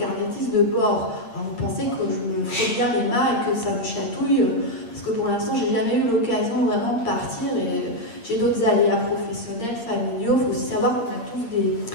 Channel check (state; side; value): late; right; 8.7 ms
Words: de bord. Alors, vous pensez que je me fais bien les mains et que ça me chatouille, parce que pour l'instant, j'ai jamais eu l'occasion vraiment de partir et j'ai d'autres aléas professionnels, familiaux. Il faut aussi savoir qu'on a tous des